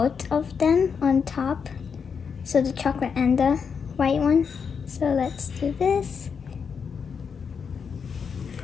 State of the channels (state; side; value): quieter; right; 6.3 dB